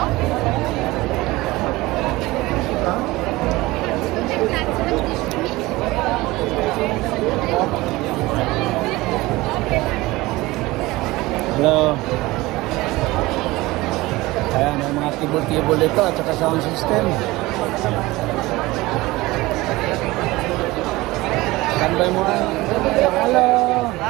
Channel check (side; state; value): left; quieter; 20.0 dB